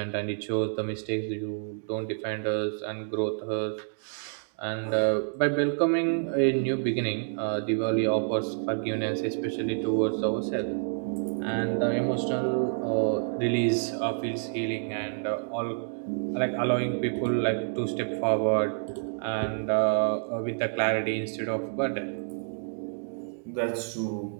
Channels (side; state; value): left; silent; digital silence